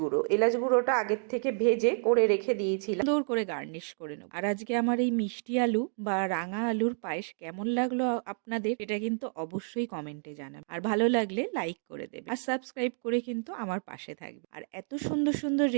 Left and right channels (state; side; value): silent; left; 58 dB below the other